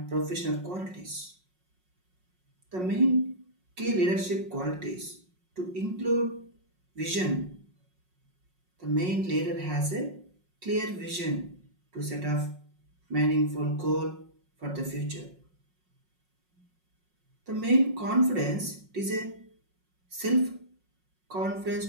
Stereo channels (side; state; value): left; late; 5.5 ms